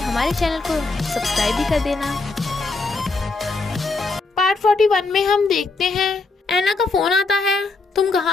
चैनल को सब्सक्राइब भी कर देना। पार्ट 41 में हम देखते हैं एना का फोन आता है। तुम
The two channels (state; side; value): quieter; right; 3.7 dB